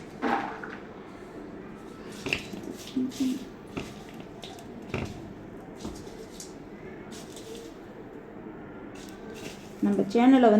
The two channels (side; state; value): both; identical; correlation 1.00